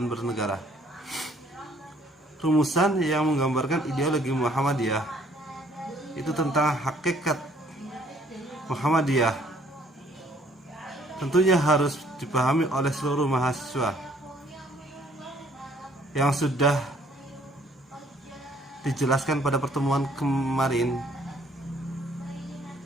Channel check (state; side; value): normal; both; correlation 0.62